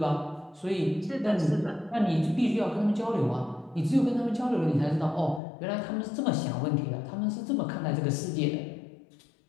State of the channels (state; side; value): drops out; right; at 5.4 s